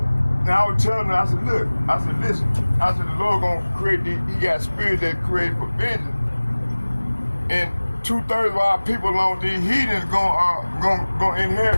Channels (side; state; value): both; inverted; correlation -1.00